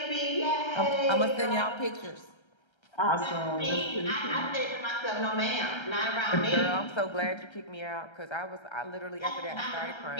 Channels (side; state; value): right; late; 1.3 ms